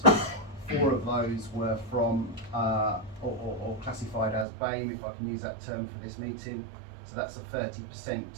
4 of those were from or classified as BAME, if I can use that term for this meeting. So that's a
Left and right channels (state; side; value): drops out; left; at 4.5 s